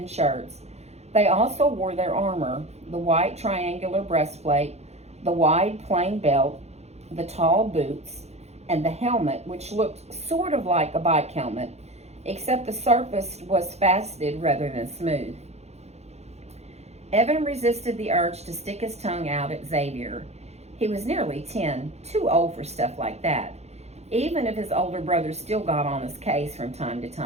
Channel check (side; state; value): left; late; 0.31 ms